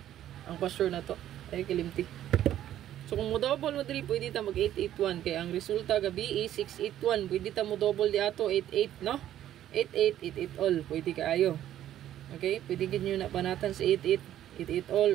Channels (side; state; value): left; quieter; 11.9 dB